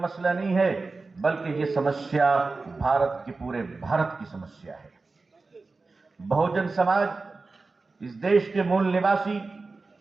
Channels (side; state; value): left; quieter; 3.8 dB